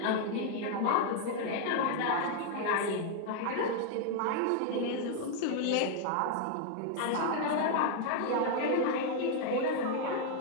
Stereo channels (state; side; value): different; both; correlation 0.00